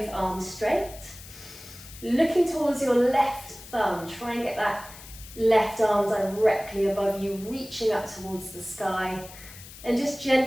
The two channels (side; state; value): left; noise; hiss, 17 dB below the sound